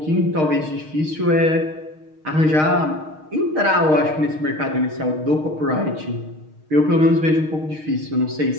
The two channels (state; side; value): late; left; 6.5 ms